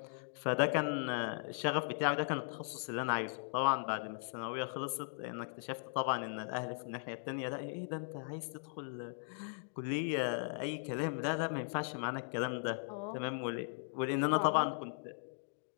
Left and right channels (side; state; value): right; silent; digital silence